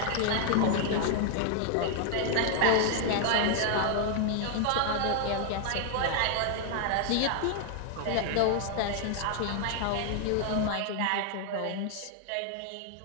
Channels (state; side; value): different; both; correlation 0.00